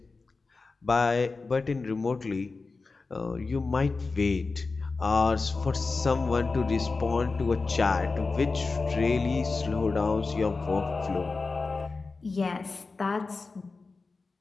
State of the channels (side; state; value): right; quieter; 4.0 dB